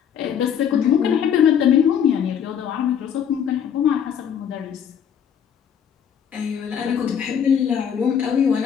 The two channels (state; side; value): quieter; right; 8.3 dB